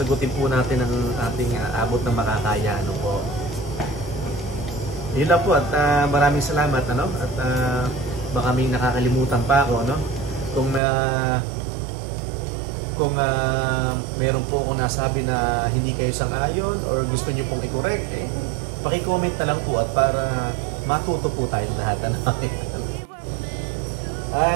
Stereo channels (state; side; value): drops out; left; at 10.8 s